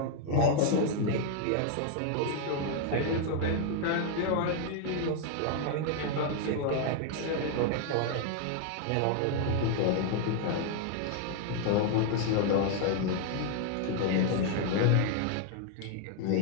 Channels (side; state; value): both; different; correlation 0.00